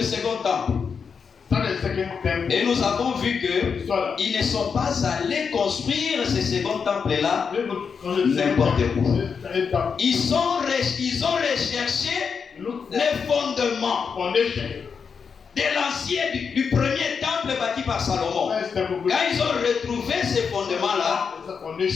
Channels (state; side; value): quieter; right; 6.0 dB